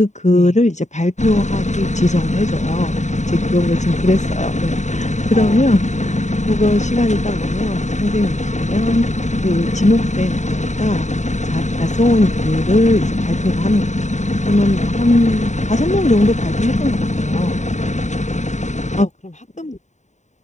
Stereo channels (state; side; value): late; right; 0.34 ms